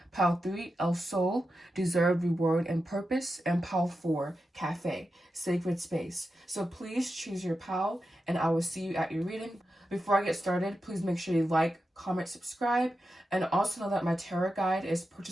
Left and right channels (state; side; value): normal; both; correlation 0.90